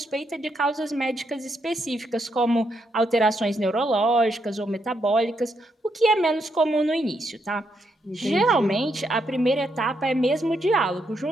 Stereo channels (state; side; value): normal; both; correlation 0.79